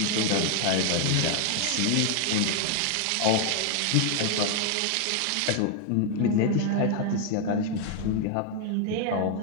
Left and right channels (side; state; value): both; different; correlation 0.00